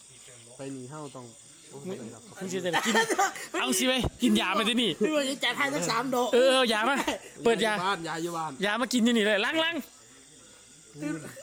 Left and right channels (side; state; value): both; identical; correlation 1.00